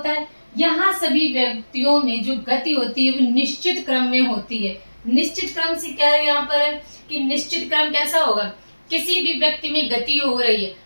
है, यहाँ सभी व्यक्तियों में जो गति होती है वो निश्चित क्रम में होती है। निश्चित क्रम से क्या है यहाँ पर है कि निश्चित क्रम कैसा होगा, किसी भी व्यक्ति में गति हो रही है,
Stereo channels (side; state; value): both; inverted; correlation -1.00